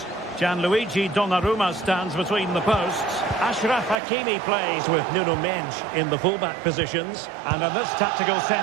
Gianluigi Donnarumma stands between the posts. Achraf Hakimi plays with Nuno Mendes in the fullback positions. And in this tactical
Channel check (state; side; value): drops out; left; at 4.0 s